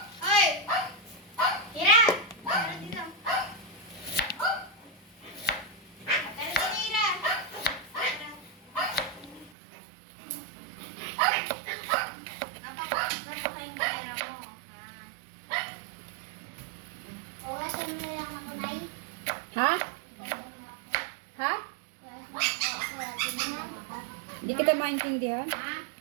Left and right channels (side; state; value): left; drops out; at 9.5 s